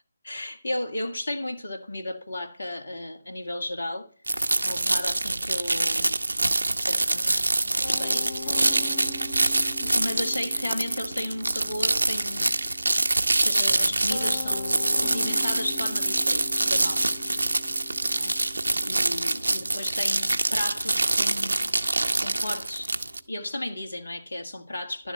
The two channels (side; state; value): both; inverted; correlation -0.97